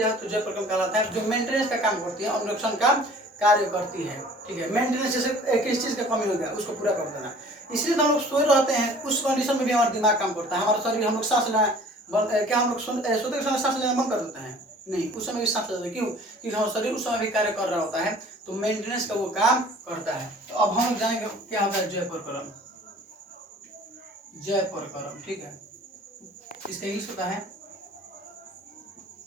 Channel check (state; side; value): normal; both; correlation 0.49